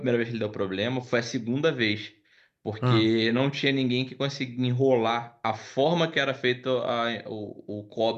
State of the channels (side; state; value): both; identical; correlation 1.00